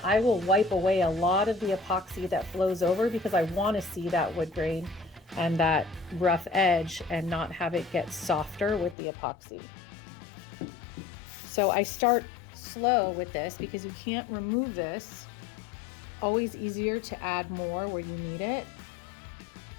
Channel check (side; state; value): right; drops out; at 9.0 s